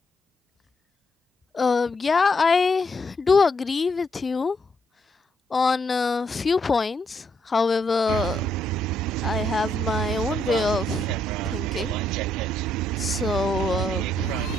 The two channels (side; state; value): both; normal; correlation 0.75